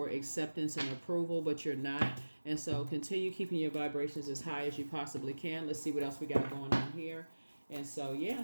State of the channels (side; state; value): both; inverted; correlation -1.00